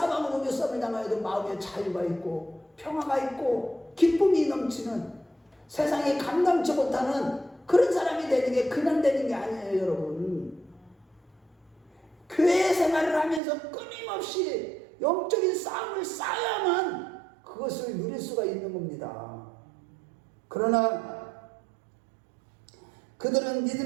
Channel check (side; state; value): left; drops out; at 13.4 s